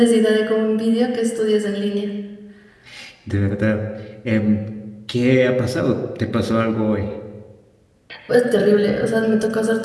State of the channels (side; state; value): both; identical; correlation 1.00